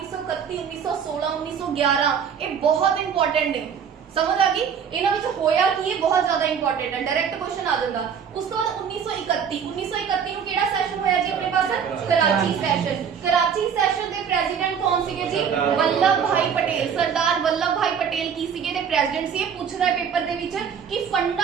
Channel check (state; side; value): quieter; left; 7.4 dB